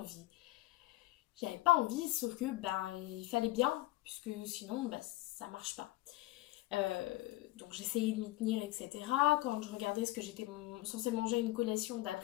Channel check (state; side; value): quieter; right; 18.7 dB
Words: J'avais pas envie, sauf que ben il fallait bien, puisque sinon ben, ça marche pas. Donc j'essayais de m'y tenir, etc. Quand je regardais ce que j'étais censée manger une collation